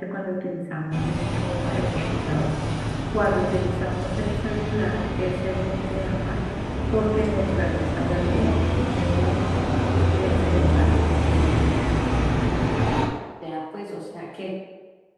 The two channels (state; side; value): identical; both; correlation 1.00